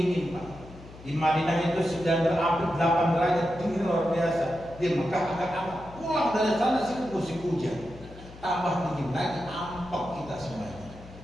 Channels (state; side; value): noise; left; hum, 18 dB below the sound